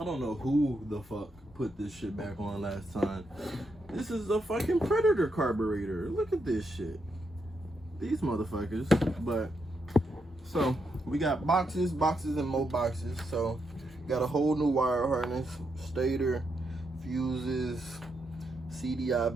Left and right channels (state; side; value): normal; both; correlation 0.81